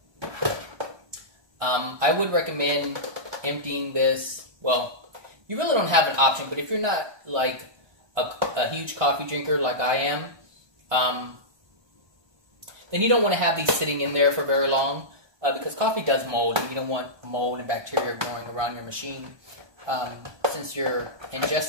I would recommend emptying this. Well, you really don't have an option, but if you're not like a huge coffee drinker like I am, then you don't want to have these sitting in there for very long, because coffee does mold, and you don't want mold and bacteria growing around your machine since you're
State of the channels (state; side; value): late; left; 1.2 ms